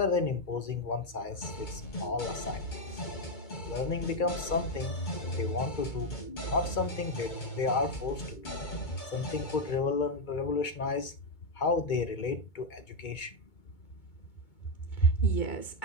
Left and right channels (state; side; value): late; right; 2.2 ms